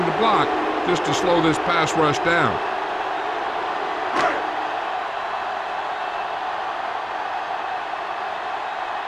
the block just to slow this pass rush down.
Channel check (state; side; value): identical; both; correlation 1.00